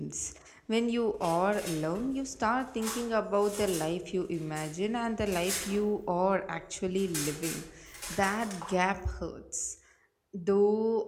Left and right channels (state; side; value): identical; both; correlation 1.00